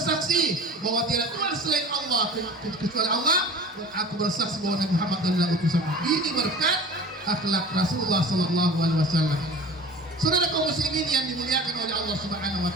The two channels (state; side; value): normal; both; correlation 0.40